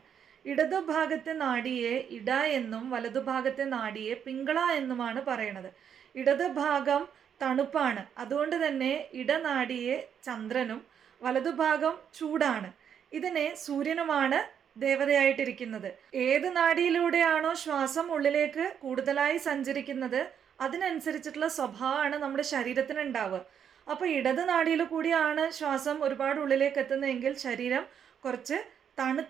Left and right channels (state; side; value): quieter; left; 8.3 dB